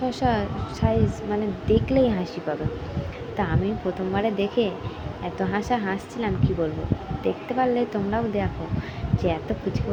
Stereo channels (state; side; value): identical; both; correlation 1.00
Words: সাইজ, মানে দেখলেই হাসি পাবে। তা আমি প্রথমবারে দেখে এত হাসছিলাম কি বলবো। দেখতে পারলে তোমরাও দেখো যে এত পুচকে